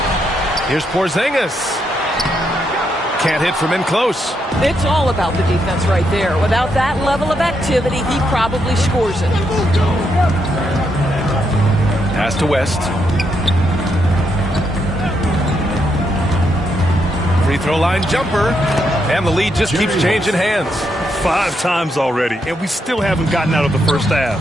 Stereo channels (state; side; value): normal; both; correlation 0.79